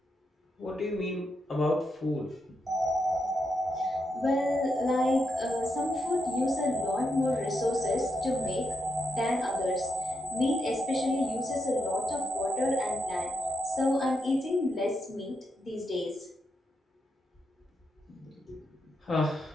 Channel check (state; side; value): normal; both; correlation 0.82